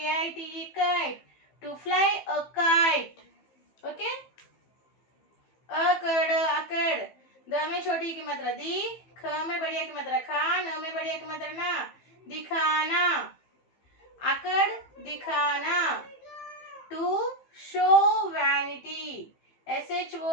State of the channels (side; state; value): right; late; 15 ms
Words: kite, to fly a kite. Okay. अकड़, अकड़, द में छोटी की मात्रा दी, ख में बढ़िया की मात्रा खा, न में बढ़िया की मात्रा ना, दिखाना, अकड़, दिखाना। To show vanity,